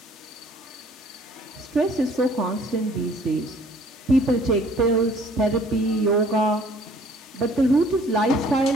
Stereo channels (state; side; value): normal; both; correlation 0.57